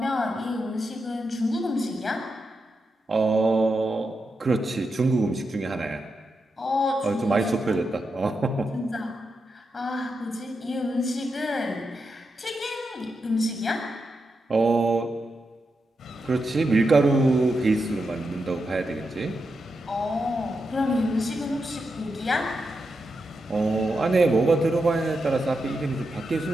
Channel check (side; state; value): both; normal; correlation 0.86